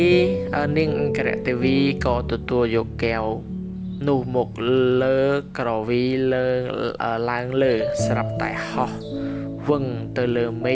ង្គរទេវីក៏ទទួលយកកែវនោះមកលើក្រវីឡើងលើស្រាប់តែហោះវឹងទៅលើមេ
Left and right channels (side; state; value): both; identical; correlation 1.00